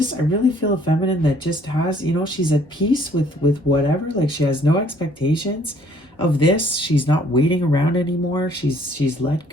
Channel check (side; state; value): both; normal; correlation 0.61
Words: really feel a feminine that just has, you know, she's at peace with whatever. Like, she has no expectations of this. She's not waiting around anymore. She's let